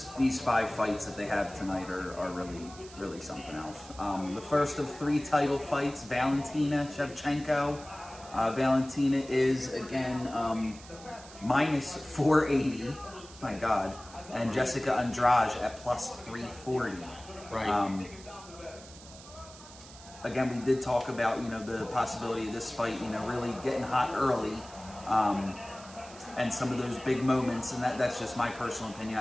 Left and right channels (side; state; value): right; noise; hiss, 18 dB below the sound